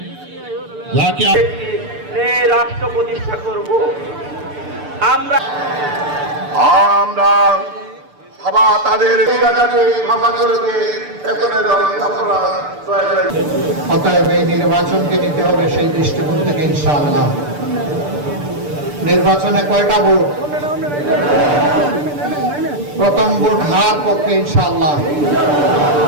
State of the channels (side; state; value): left; late; 6.8 ms